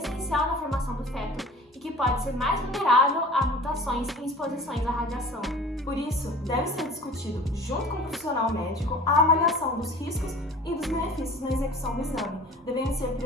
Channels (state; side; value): normal; both; correlation 0.42